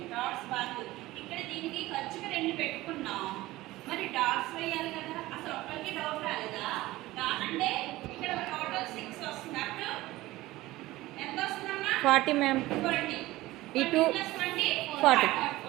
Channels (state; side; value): quieter; left; 17.9 dB